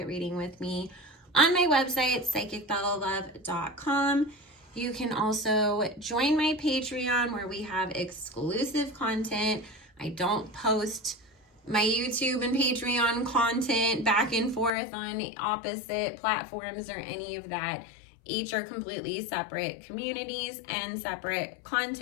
reading with me on my website, psychicbellalove.com. You can also join my Patreon where we have exclusive content. I don't post my YouTube and Patreon content back and forth on opposite platforms or any of that. Each are completely separate communities and separate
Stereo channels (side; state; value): right; drops out; at 14.7 s